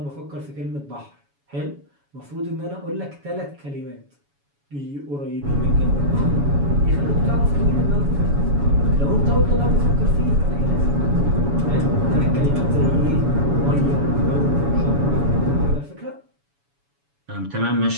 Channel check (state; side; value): late; left; 7.1 ms